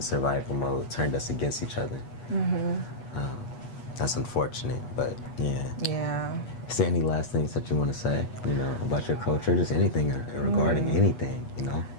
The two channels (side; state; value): right; late; 8.3 ms